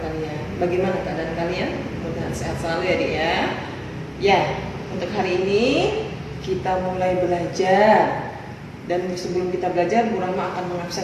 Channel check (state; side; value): identical; both; correlation 1.00